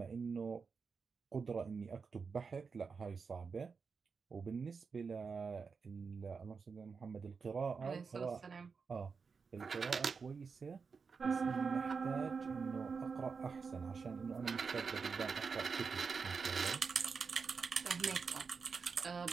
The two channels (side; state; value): left; quieter; 5.2 dB